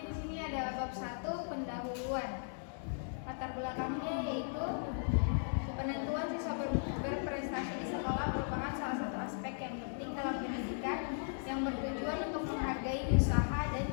di sini ada bab 1, pendahuluan. Latar belakangnya yaitu penentuan siswa berprestasi di sekolah merupakan salah satu aspek yang penting dalam pendidikan yang bertujuan untuk menghargai usaha dan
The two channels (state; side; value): silent; right; digital silence